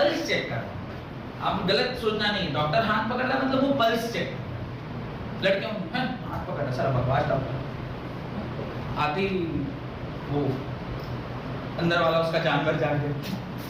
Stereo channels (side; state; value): both; identical; correlation 1.00